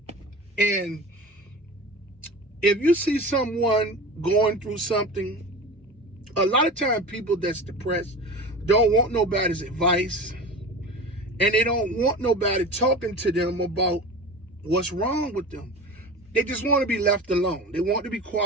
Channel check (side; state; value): both; normal; correlation 0.32